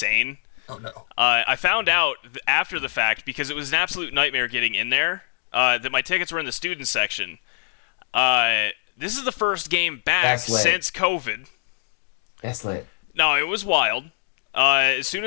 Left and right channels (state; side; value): silent; right; 63 dB below the other